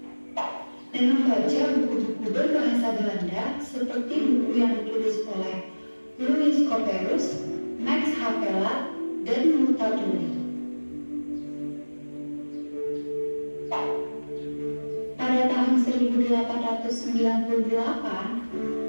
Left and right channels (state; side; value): inverted; both; correlation -1.00